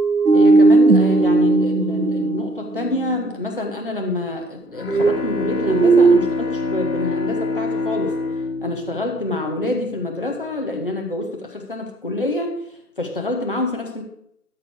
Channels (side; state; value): both; normal; correlation 0.61